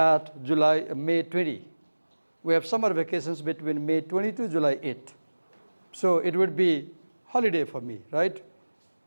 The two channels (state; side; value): inverted; both; correlation -1.00